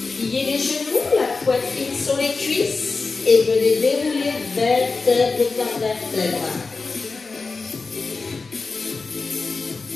Pliez les genoux, la poitrine sur les cuisses et venez dérouler vertèbre par vertèbre.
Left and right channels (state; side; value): quieter; right; 4.2 dB